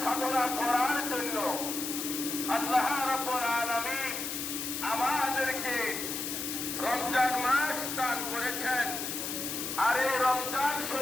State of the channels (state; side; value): noise; left; hiss, 4 dB below the sound